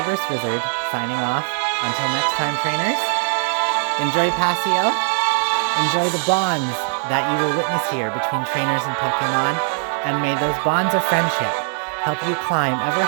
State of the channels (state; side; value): silent; left; 59 dB below the other